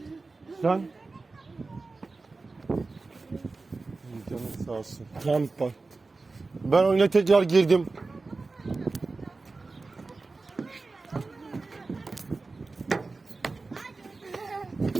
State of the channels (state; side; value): quieter; left; 3.7 dB